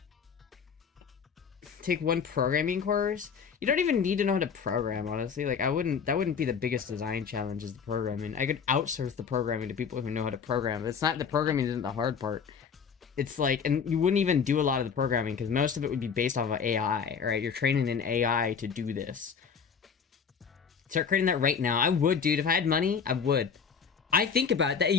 Take one programming course? You don't even need to know how to program, honestly. Like, that wouldn't be the biggest design challenge, is the programming. I could outsource the programming to people who know how to program. It's not, the programming isn't the hard part. It's like, and you wouldn't even do a lot of the programming because most of it would be based off of AI, right? You're training an AI to do this. Start creating that right now. I would, dude. If I had money, I would. I think about that.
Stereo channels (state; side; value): quieter; right; 6.5 dB